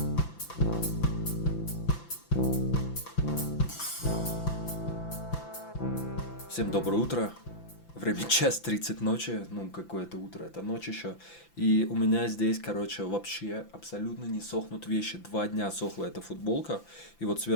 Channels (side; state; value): right; late; 5.9 ms